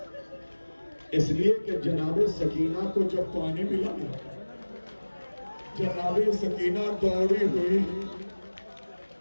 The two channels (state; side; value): inverted; both; correlation -1.00